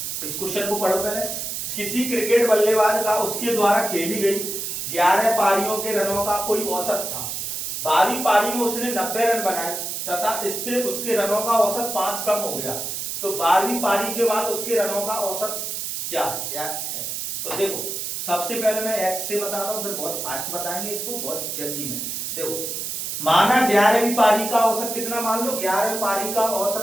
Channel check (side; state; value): right; noise; hiss, 4 dB below the sound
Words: इस क्वेश्चन को पढ़ो पहले। किसी क्रिकेट बल्लेबाज का उसके द्वारा खेली गई 11 पारियों के रनों का कोई औसत था। 12वीं पारी में उसने 90 रन बनाए तथा इससे उसके रनों का औसत 5 कम हो गया। तो 12वीं पारी के बाद उसके रनों का औसत क्या है? तो देखो सबसे पहले मैं एक्स से बताता हूँ, फिर बहुत फास्ट बताएंगे इसको, बहुत जल्दी में। देखो माना 11वीं पारी का औसत कितना मान लो, 11वीं पारी का